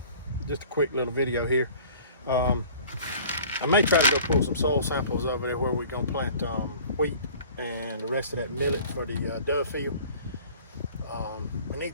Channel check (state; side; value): inverted; both; correlation -0.47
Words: just a quick little video here. I may try to go pull some soil samples over there where we're gonna plant wheat and the rest of that millet for the dove field. We